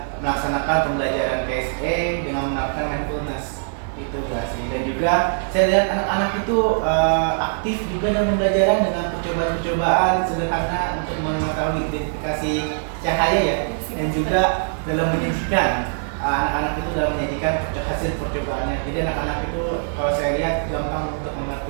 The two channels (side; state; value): left; silent; digital silence